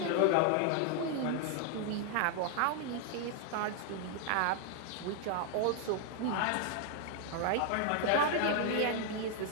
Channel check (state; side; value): different; both; correlation 0.00